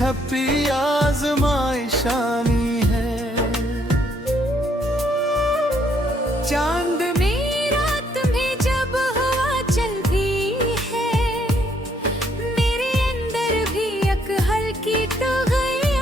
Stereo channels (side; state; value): both; normal; correlation 0.69